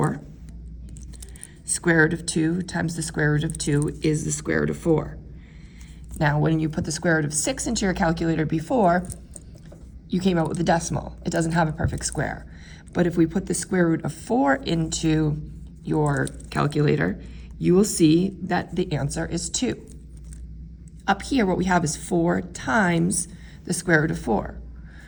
Square root of 2 times the square root of 2 is the square root of 4. Now, when you put the square root of 6 into your calculator before, you came out with a decimal. It doesn't have a perfect square. But if we put the square root of 4 into your calculator, you will see that the answer is 2. Up here, what we have is 4 times the square root of 4.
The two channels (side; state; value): both; identical; correlation 1.00